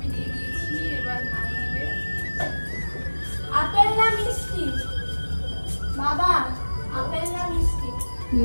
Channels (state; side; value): inverted; both; correlation -1.00